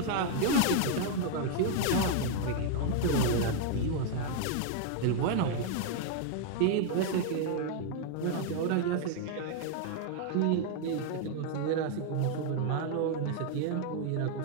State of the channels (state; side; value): different; both; correlation 0.00